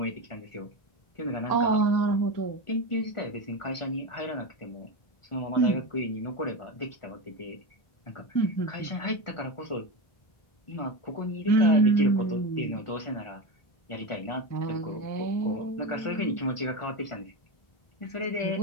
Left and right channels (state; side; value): late; right; 1.4 ms